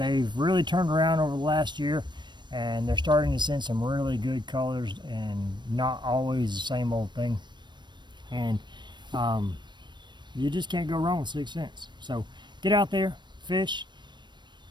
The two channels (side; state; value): left; late; 0.22 ms